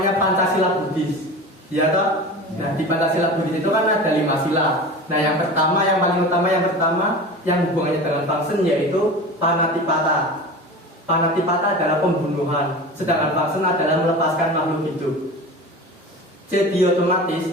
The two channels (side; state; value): both; normal; correlation 0.33